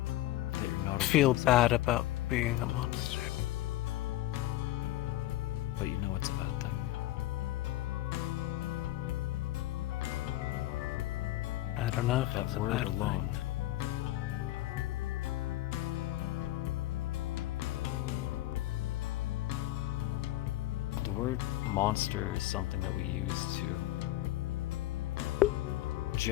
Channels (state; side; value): quieter; right; 15.7 dB